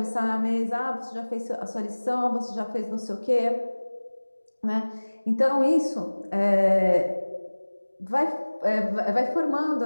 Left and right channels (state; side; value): inverted; both; correlation -1.00